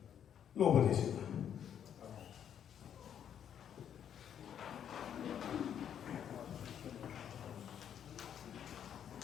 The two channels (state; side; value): quieter; right; 9.1 dB